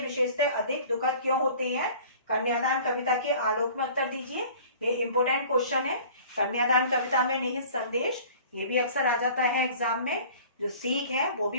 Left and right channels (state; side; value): inverted; both; correlation -0.46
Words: विशेषतः अधिक दुखद क्यों होते हैं, कन्यादान कविता के आलोक में उत्तर दीजिए। ये इंपोर्टेंट क्वेश्चन है। कन्यादान कविता में निहित संदेश, ये भी अक्सर आ जाता है एग्जाम में। जो सीख है वो